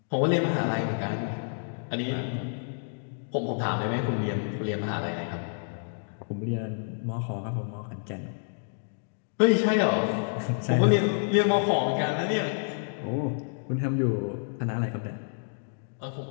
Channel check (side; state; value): right; silent; digital silence